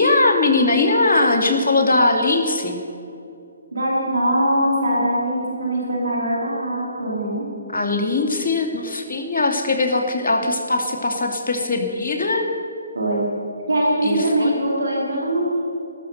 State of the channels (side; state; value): both; inverted; correlation -0.65